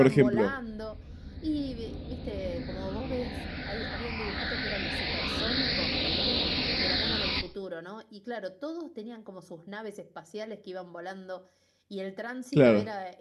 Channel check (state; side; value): identical; both; correlation 1.00